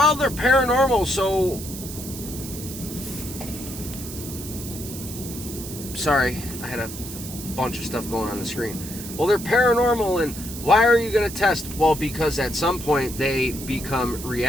they're paranormal, so... Sorry, I had a bunch of stuff going on the screen. Well, they're paranormal, and why are you going to test? Well, because at some point they become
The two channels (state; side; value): noise; right; hiss, 11 dB below the sound